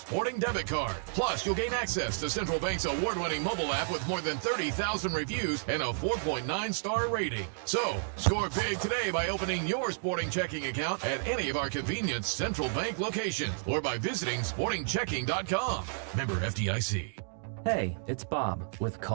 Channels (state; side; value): silent; left; digital silence